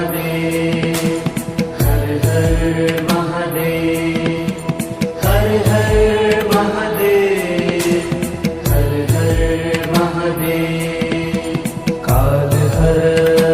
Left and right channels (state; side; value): identical; both; correlation 1.00